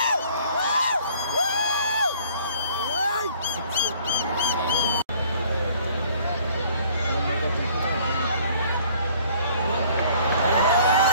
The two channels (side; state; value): both; inverted; correlation -0.56